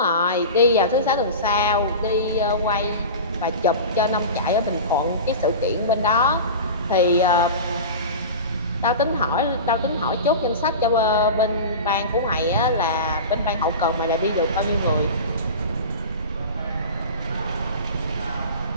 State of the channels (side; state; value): both; inverted; correlation -0.30